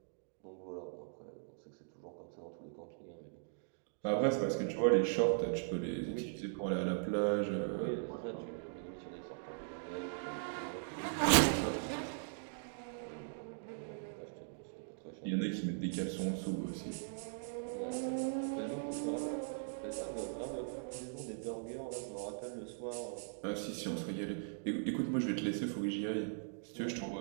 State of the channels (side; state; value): left; silent; digital silence